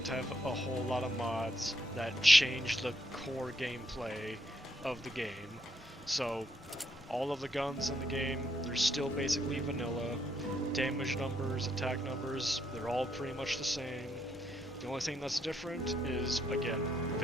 have a whole lot of mods that change the core gameplay of the game. So all of the guns in the game, they're still basically vanilla. Damage numbers, attack numbers, they're all pretty much the same. The only thing that's different is, again,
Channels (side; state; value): both; normal; correlation 0.76